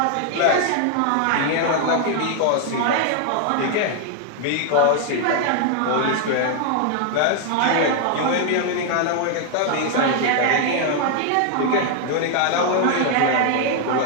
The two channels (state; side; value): different; both; correlation 0.00